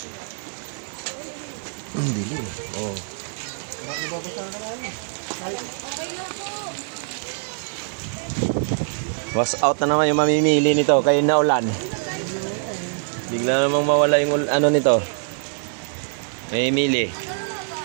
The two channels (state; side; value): silent; left; digital silence